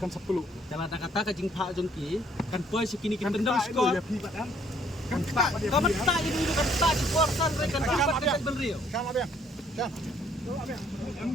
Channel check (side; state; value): both; normal; correlation 0.64